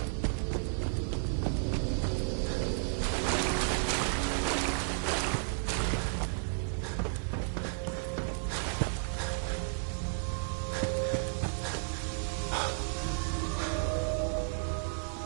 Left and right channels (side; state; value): left; silent; 55 dB below the other